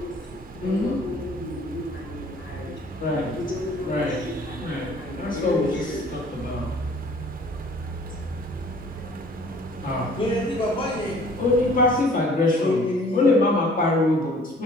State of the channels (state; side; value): normal; both; correlation 0.53